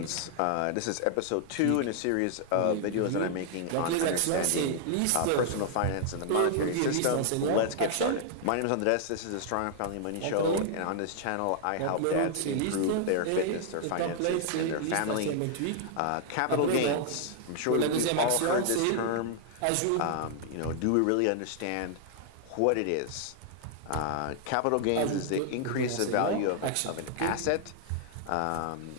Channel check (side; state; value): both; different; correlation 0.00